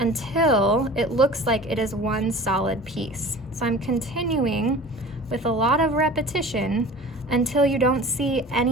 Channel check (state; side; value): normal; both; correlation 0.41